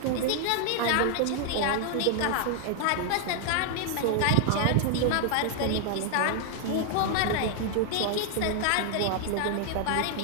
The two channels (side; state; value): both; different; correlation 0.00